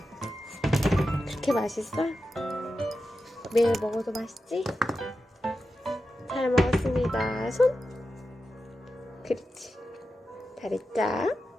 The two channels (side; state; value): both; normal; correlation 0.91